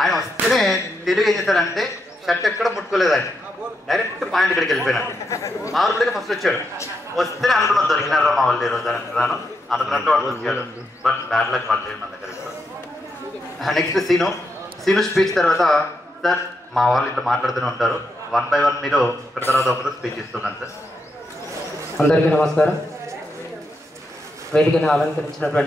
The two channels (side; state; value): both; normal; correlation 0.82